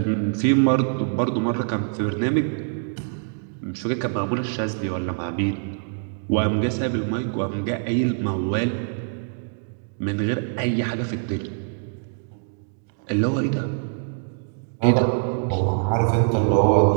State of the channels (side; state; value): left; silent; digital silence